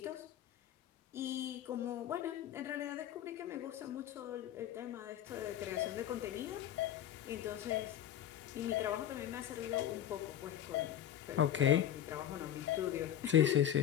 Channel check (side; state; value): right; quieter; 11.0 dB